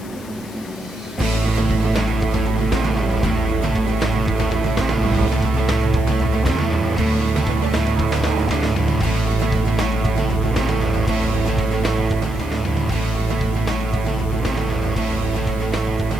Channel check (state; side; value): noise; left; hiss, 21 dB below the sound